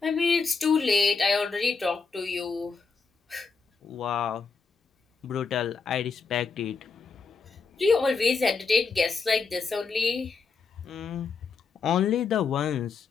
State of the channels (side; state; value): right; quieter; 4.9 dB